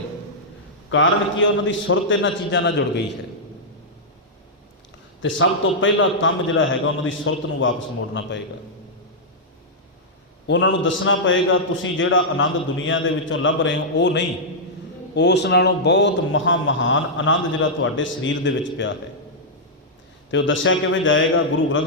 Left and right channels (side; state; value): both; normal; correlation -0.08